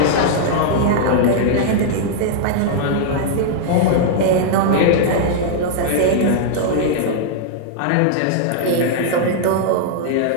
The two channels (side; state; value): both; different; correlation -0.01